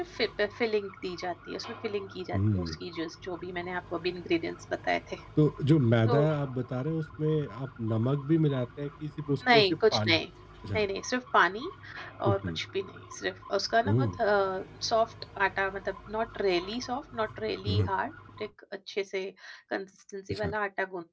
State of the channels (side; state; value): both; identical; correlation 1.00